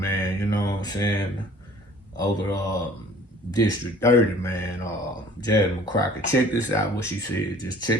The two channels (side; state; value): both; normal; correlation 0.51